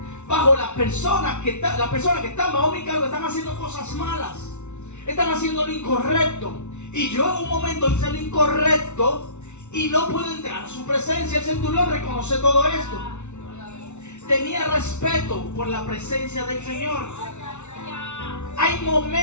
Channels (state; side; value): late; right; 0.82 ms